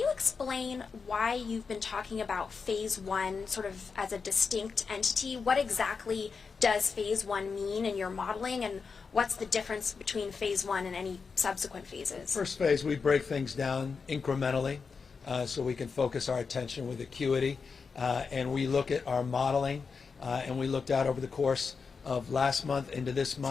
explain why you've been talking about Phase 1 sort of as a distinct entity? What exactly does Phase 1 mean in your modeling, and what's the difference between Phase 1 and any subsequent phases? First phase, we break things down incrementally so we can focus our attention with acuity, and we look at our modeling, and we looked out over the course of last month into this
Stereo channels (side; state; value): right; quieter; 5.2 dB